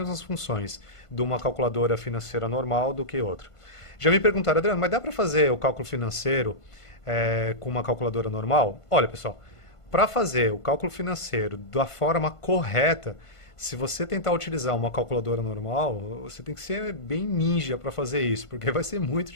funções de uma calculadora financeira normal do que outra. Já me perguntaram, Adriano, mas dá para fazer o cálculo financeiro com uma calculadora normal? Olha, pessoal, para fazer o cálculo financeiro da forma correta, se você tentar utilizar uma calculadora normal, você tem que ser bem ninja para fazer isso, porque vai ser muito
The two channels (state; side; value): late; right; 1.5 ms